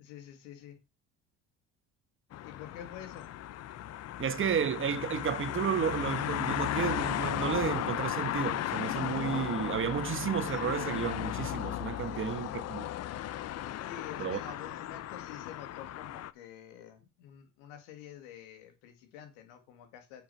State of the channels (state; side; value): normal; both; correlation 0.12